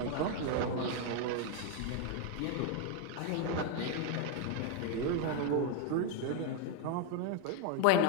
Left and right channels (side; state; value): both; different; correlation 0.01